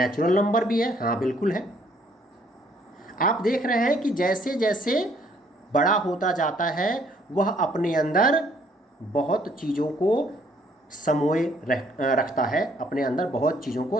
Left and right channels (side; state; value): both; normal; correlation 0.65